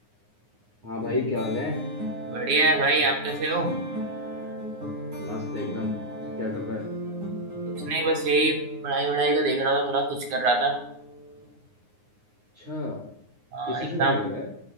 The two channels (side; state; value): left; late; 9.6 ms